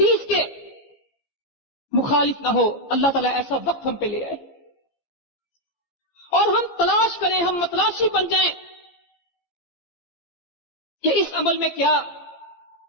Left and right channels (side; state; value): right; late; 15 ms